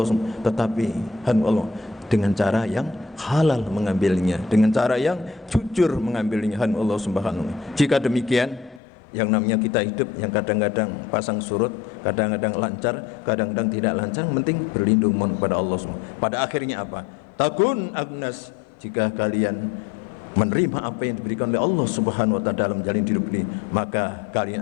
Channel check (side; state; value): right; drops out; at 8.8 s